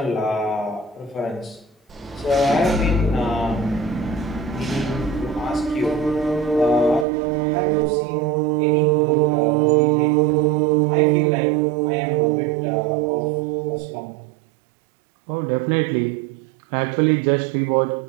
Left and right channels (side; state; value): left; drops out; at 7.1 s